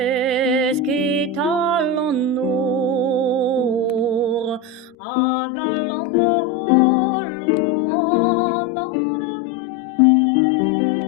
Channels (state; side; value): drops out; right; at 5.0 s